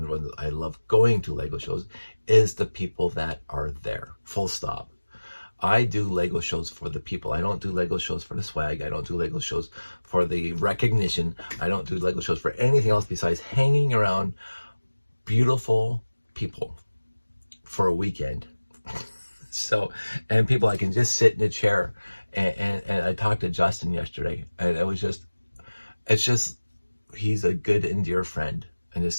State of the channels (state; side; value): inverted; both; correlation -1.00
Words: when I love going to Lego shows, is the people that are there. Full stop. I do Lego shows for the people. I don't do Lego shows for the swag. I don't do Lego shows for the recognition. I don't do Lego shows for anything else besides hanging around beautiful people for a weekend. So, and people, I can just sit in a chair, and I talked to Justin yesterday, and it's just, he's a good and dear friend, and just